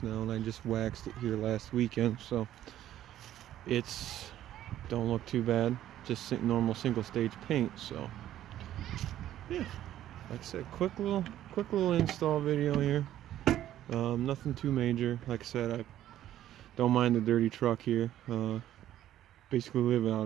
now, and I just waxed it here last weekend, so it's don't look too bad. Just normal single stage paint. So yeah, like I said, quick little install video here. Nothing too major. Like I said, I don't mind the dirty truck here. Basically living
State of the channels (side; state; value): left; quieter; 12.4 dB